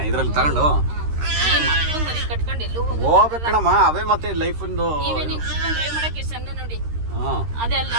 ಇದ್ರಲ್ಲಿ ತಗೊಂಡು ಹೋಗ್ಬೇಕಣಮ್ಮ ಅವೇ ಮತ್ತೆ ಲೈಫ್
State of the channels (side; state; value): left; late; 13 ms